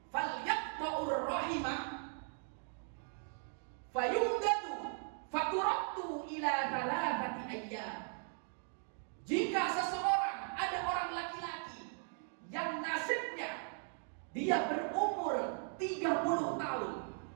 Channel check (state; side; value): silent; left; 52 dB below the other